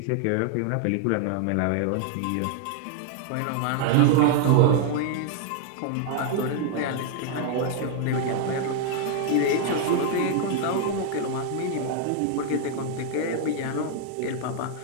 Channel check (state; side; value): different; both; correlation 0.00